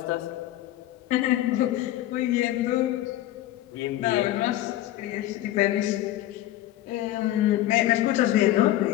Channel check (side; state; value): right; quieter; 14.3 dB